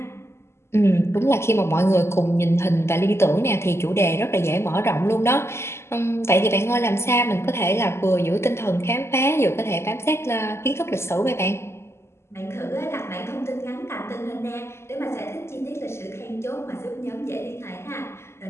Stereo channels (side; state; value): right; late; 0.13 ms